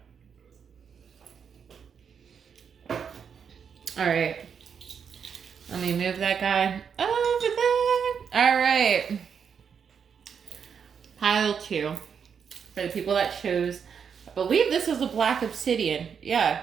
Alright. Let me move that guy over there. Alright. Pile two. For the people that chose, I believe this is a black obsidian.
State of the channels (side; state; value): left; quieter; 7.0 dB